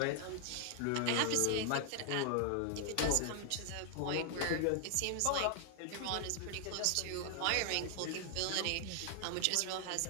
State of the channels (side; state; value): both; different; correlation 0.00